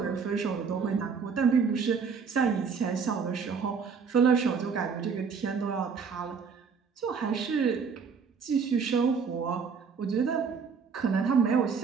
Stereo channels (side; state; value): left; quieter; 5.8 dB